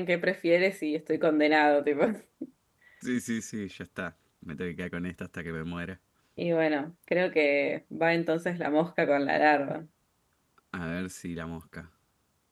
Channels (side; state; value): both; identical; correlation 1.00